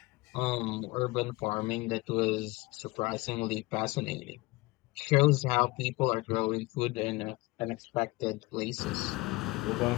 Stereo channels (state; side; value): quieter; right; 22.0 dB